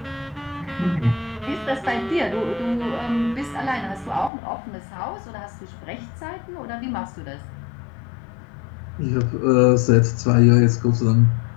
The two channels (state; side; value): drops out; right; at 4.3 s